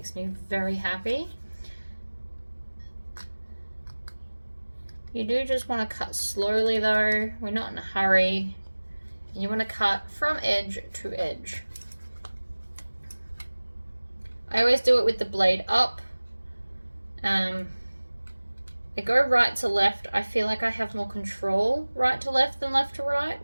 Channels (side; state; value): both; inverted; correlation -1.00